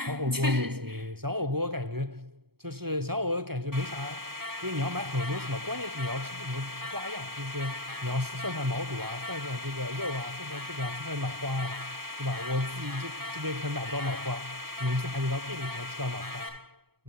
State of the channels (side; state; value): left; late; 0.95 ms